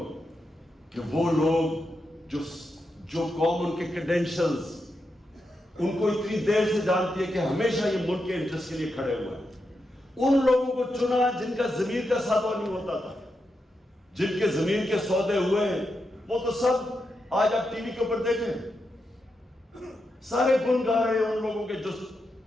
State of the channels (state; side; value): normal; both; correlation 0.86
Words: کہ وہ لوگ جو قوم ان کے کریڈینشلز ان کو اتنی دیر سے جانتی ہے کہ ہمیشہ یہ ملک کے انٹرسٹ کے لیے کھڑے ہوئے ہیں، ان لوگوں کو چنا جن کا زمین کا سودا نہیں ہوتا تھا، جن کے زمین کے سودے ہوئے ہیں، وہ تو سب آج آپ ٹی وی کے اوپر دیکھیں، سارے گن گا رہے ہیں ان لوگوں کے جو